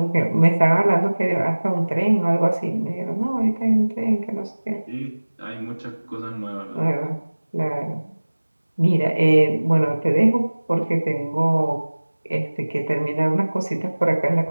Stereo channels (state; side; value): inverted; both; correlation -1.00